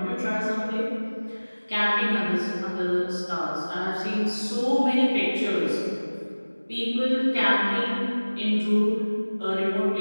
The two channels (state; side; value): inverted; both; correlation -1.00